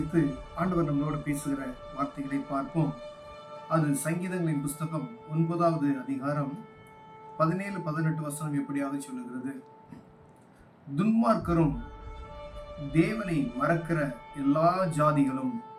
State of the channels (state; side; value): identical; both; correlation 1.00